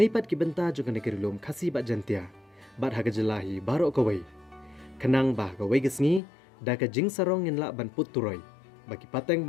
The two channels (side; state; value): right; drops out; at 6.2 s